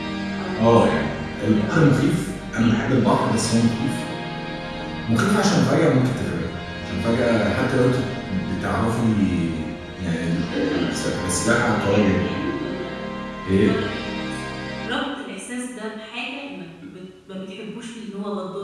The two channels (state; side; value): identical; both; correlation 1.00